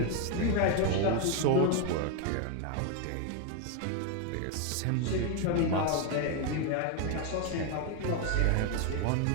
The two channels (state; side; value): different; both; correlation 0.01